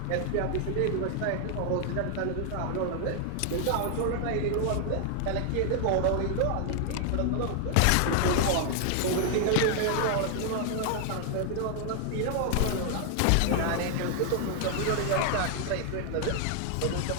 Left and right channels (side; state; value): both; different; correlation 0.00